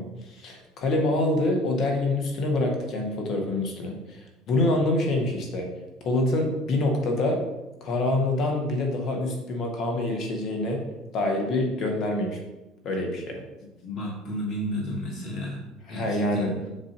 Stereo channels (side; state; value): both; normal; correlation 0.45